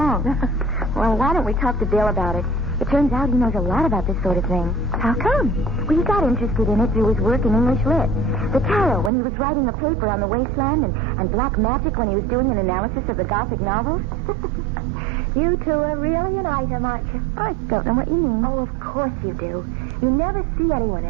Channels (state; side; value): drops out; left; at 9.1 s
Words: Well, why don't we talk to Bill about it? It turns out he knows a lot about this sort of thing. How come? Well, he got interested in it through his work in English Lit. The tarot when he was writing a paper on the wasteland, and black magic when he was doing an analysis of the Gothic novels. You two are really an item, aren't you? I don't know what you mean. Oh, of course you do. You never see anyone